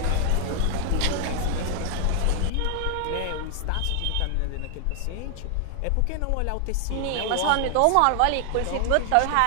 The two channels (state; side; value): different; both; correlation 0.00